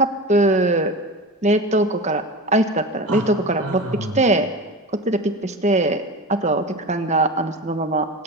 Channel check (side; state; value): both; normal; correlation 0.28